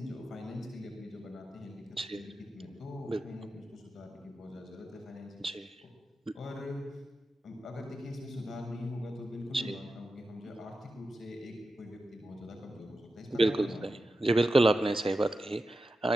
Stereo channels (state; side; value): normal; both; correlation 0.90